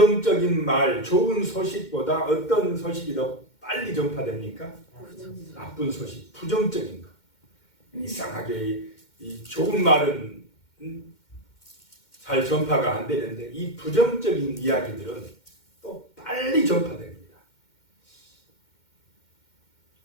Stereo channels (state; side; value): late; right; 2.1 ms